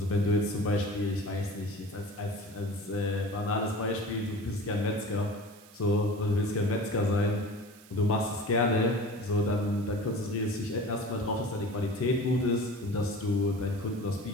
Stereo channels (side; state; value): right; noise; hiss, 23 dB below the sound